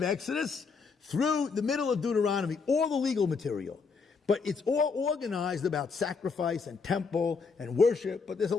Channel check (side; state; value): right; quieter; 5.0 dB